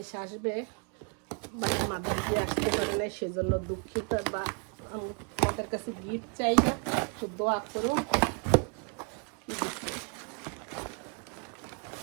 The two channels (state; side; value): quieter; left; 36.9 dB